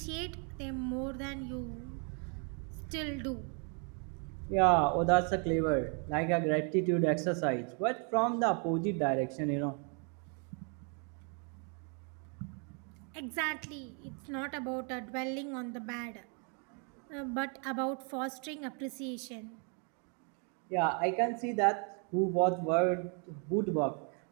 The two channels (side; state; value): left; quieter; 39.2 dB